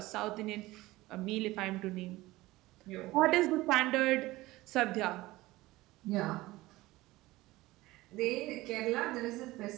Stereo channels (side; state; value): left; quieter; 18.8 dB